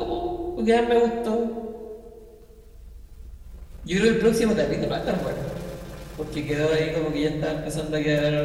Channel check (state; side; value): identical; both; correlation 1.00